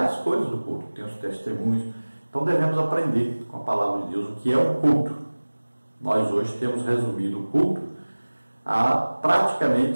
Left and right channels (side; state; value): both; inverted; correlation -1.00